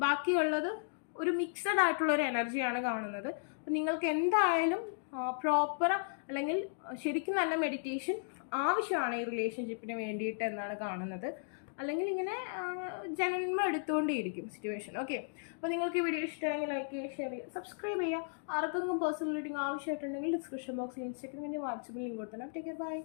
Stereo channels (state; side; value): silent; right; digital silence